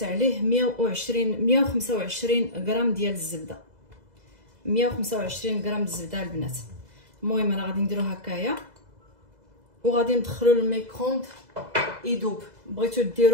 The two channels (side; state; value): left; late; 2.0 ms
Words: عليه 125 غرام ديال الزبده. 125 غرام الزبده البنات. المهم انا غادي نديرو هكايا وغادي ندخلو للميكروند يذوب. بغيتو